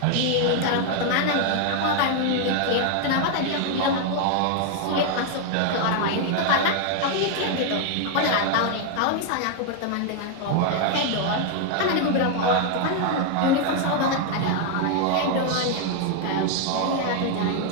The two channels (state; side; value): different; both; correlation 0.00